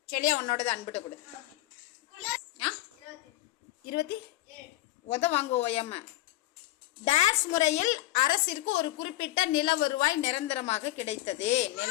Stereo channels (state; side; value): quieter; right; 16.2 dB